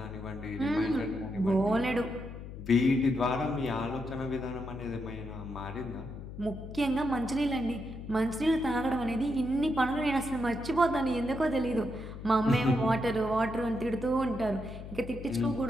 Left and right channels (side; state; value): left; noise; hum, 11 dB below the sound